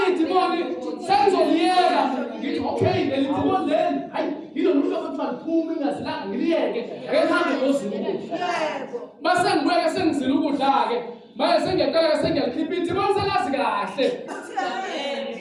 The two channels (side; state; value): both; identical; correlation 1.00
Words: idimoni sengizoliyela ngithi okay leli idimoni leli hayi yilo muntu akuthiwa liphuma ingazilanga ngiliyeke ngihambe ngozila ukudla. Mase ngibuye sengizila ukudla ke manje sengiyaqala sengiyalikhipha idimoni selazi kahle.